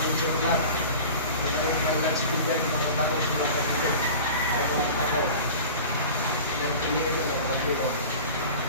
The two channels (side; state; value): both; inverted; correlation -0.37